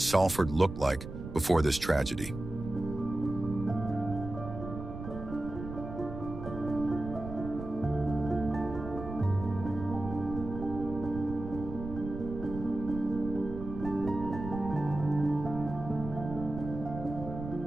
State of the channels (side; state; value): right; noise; rumble, 9 dB below the sound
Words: looked like before this tragedy.